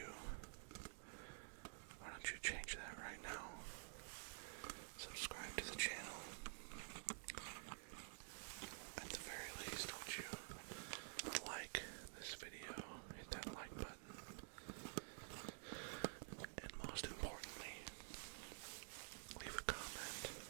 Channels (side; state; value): left; silent; digital silence